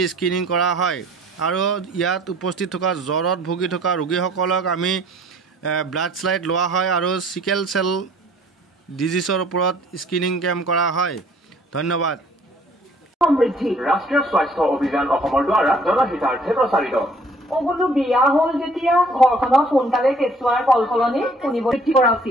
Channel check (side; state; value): both; normal; correlation 0.56